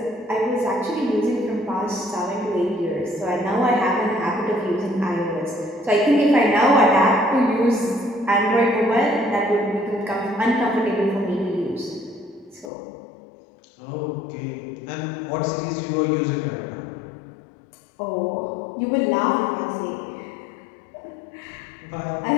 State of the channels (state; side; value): drops out; right; at 12.7 s